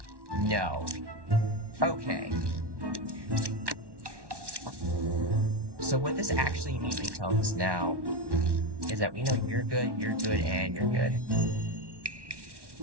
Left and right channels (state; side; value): late; left; 1.1 ms